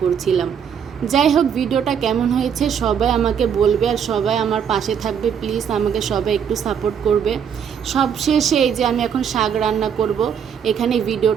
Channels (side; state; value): left; quieter; 7.7 dB